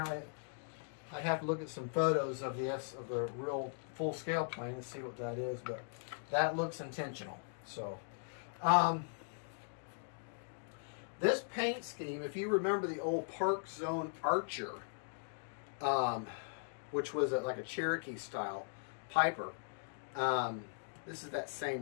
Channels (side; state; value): right; silent; digital silence